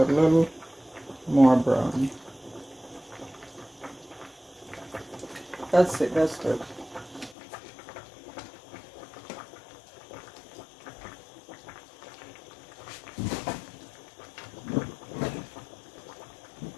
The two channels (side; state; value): right; drops out; at 7.4 s